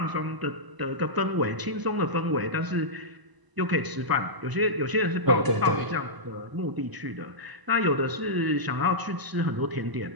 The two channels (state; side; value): late; left; 1.0 ms